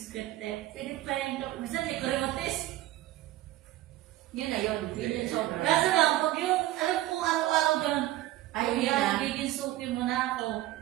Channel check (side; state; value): left; quieter; 15.5 dB